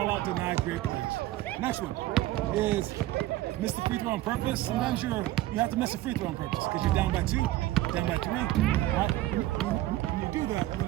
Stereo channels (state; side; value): quieter; left; 15.8 dB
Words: out deny great players. Next one is miss the free throw on purpose. Sometimes you have to miss a free throw on purpose because you're down by 2, down by 3. Right? When you do that, you're